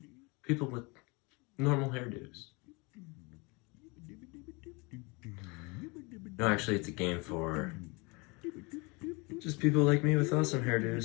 People with normal hairdos. No, actually, it's a game for just people like me with awesome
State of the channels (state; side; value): quieter; right; 28.1 dB